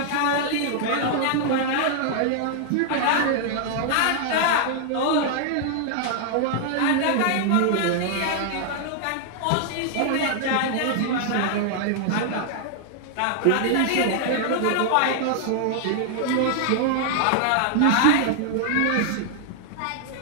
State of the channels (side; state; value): both; different; correlation -0.01